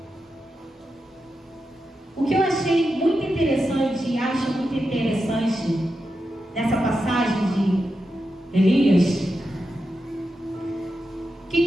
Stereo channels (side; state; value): both; normal; correlation 0.88